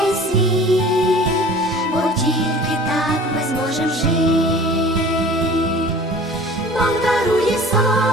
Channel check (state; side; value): normal; both; correlation 0.44